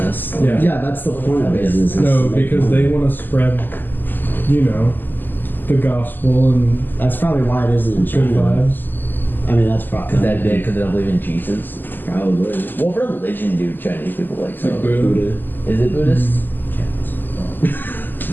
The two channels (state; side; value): late; right; 0.090 ms